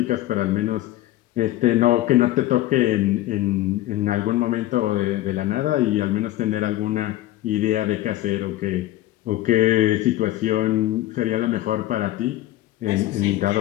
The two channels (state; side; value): quieter; right; 15.2 dB